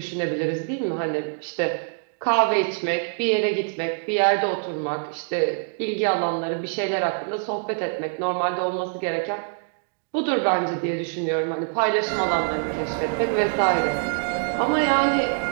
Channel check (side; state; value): left; silent; digital silence